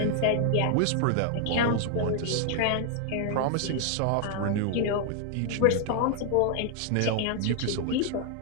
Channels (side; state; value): both; different; correlation 0.00